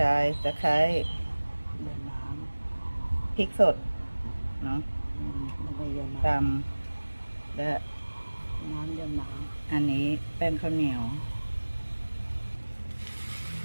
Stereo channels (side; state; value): both; inverted; correlation -1.00